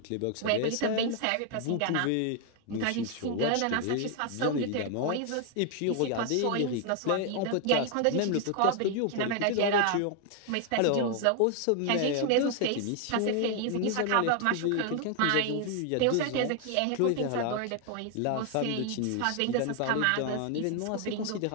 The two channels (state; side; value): different; both; correlation 0.00